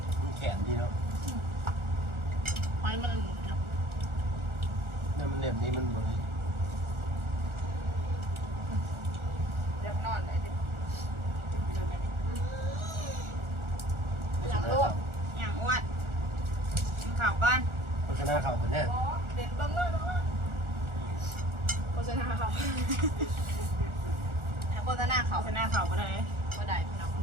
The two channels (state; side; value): late; left; 1.4 ms